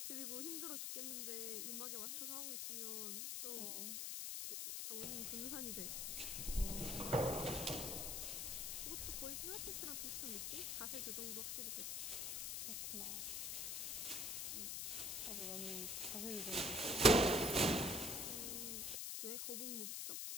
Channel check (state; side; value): noise; left; hiss, 1 dB below the sound